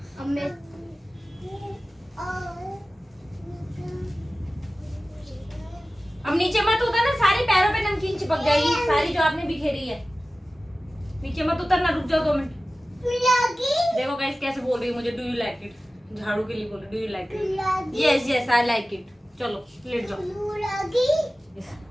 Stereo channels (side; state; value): both; normal; correlation 0.96